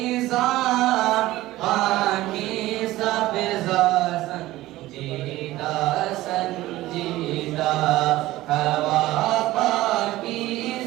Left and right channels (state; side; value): quieter; left; 16.8 dB